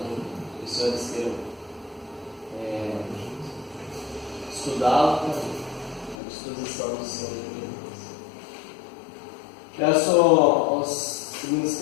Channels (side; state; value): right; drops out; at 6.2 s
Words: os senhores queiram estudá-lo, à disposição dos senhores. Peço ao segundo